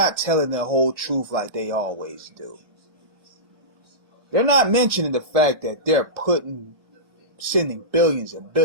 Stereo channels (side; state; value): left; late; 1.3 ms